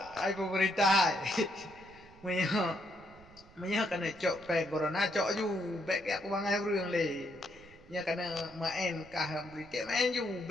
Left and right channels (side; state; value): right; noise; rumble, 24 dB below the sound